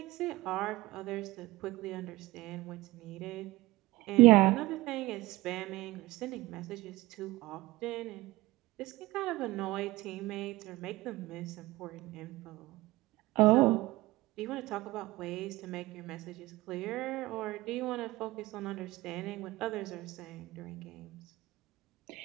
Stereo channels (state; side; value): quieter; left; 19.5 dB